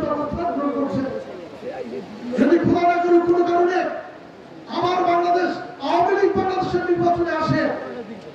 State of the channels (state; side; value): identical; both; correlation 1.00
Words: অবস্থান গ্রহণ করছে। যদি খোলা না করুক কোনো কারণে আবার বাংলাদেশ আওয়ামী লীগ বাংলাদেশের নির্বাচনে আসে,